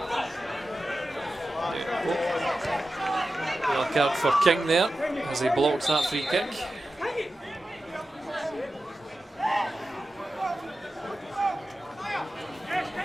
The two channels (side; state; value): both; normal; correlation 0.93